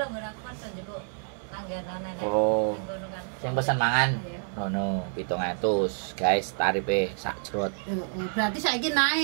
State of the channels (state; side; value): silent; left; 56 dB below the other